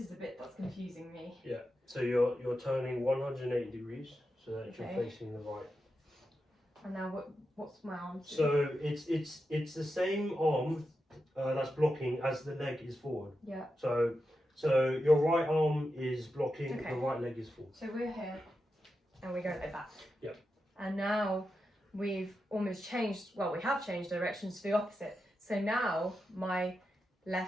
the bit that's confusing me. Yeah. So you're turning 180 degrees so that Okay. you're facing the right. And now what's my arm? So it's the same arm that's blocking as the leg is forward. Yeah. So your right arm is blocking, Okay. the right leg is forward. So we're here and we go like that. Yep. And now we've almost changed, well, we have changed directions to the opposite. So now my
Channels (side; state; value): both; normal; correlation 0.89